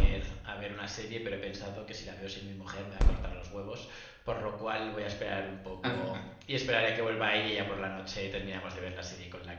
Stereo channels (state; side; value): identical; both; correlation 1.00